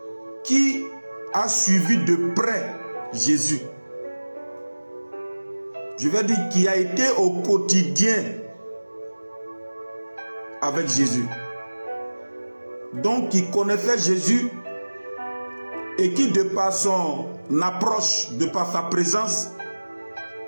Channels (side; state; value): both; inverted; correlation -1.00